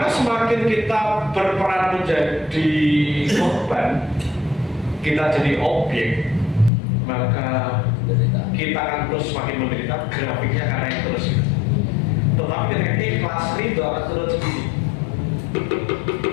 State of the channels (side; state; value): right; drops out; at 6.7 s